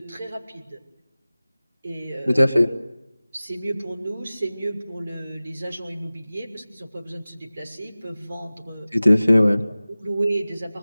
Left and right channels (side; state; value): both; inverted; correlation -0.98